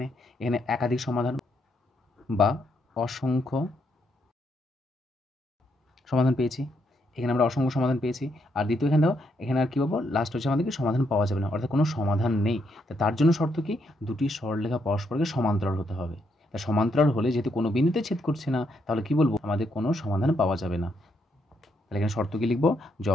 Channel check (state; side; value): normal; both; correlation 0.76